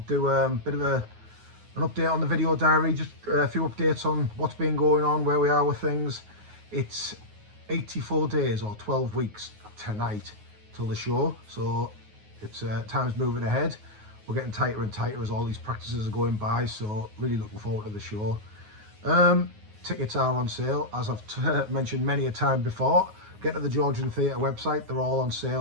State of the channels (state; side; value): late; left; 9.5 ms